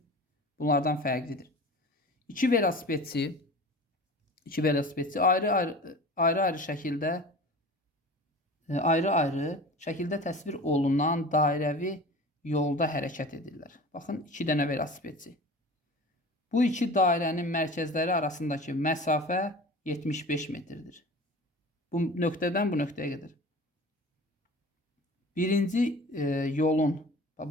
bunlardan fərqlidir. İki velosipedçi ayrı-ayrı şəkildə təsvir olunan dairəvi yolda hərəkət edirlər. Baxın, 2 dənə velosipedçi. Bu iki dairənin mərkəzləri arasındakı məsafə 75 metrdir. Bu nöqtədən bu nöqtəyə qədər. Birinci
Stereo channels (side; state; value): both; normal; correlation 0.38